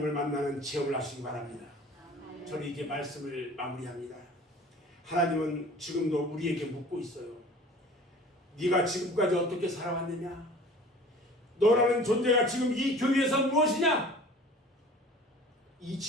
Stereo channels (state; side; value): normal; both; correlation 0.45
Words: 만나는 체험을 하시기 바랍니다. 저는 이제 말씀을 마무리합니다. 하나님은 지금도 우리에게 묻고 있어요. 네가 지금까지 어떻게 살아왔느냐? 너라는 존재가 지금 이 교회에서 무엇이냐? 이